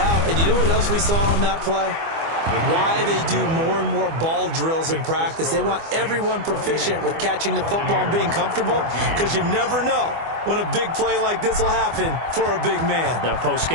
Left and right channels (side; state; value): left; late; 24 ms